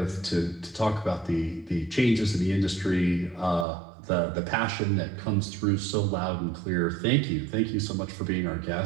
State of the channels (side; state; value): left; drops out; at 3.7 s